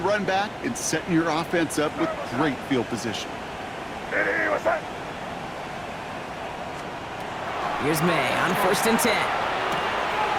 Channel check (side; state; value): both; identical; correlation 1.00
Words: run back, and setting your offense up with great field position. Here's May on 1st and 10.